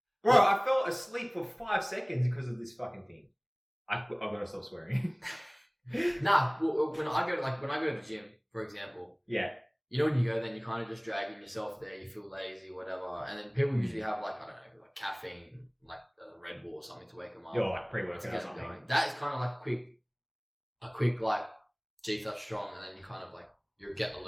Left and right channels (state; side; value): identical; both; correlation 1.00